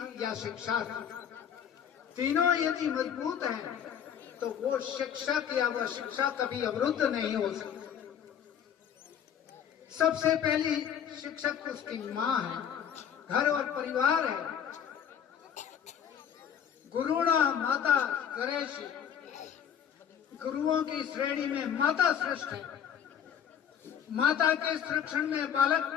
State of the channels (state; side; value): quieter; right; 8.6 dB